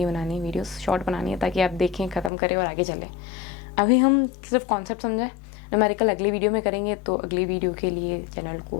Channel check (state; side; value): drops out; right; at 2.3 s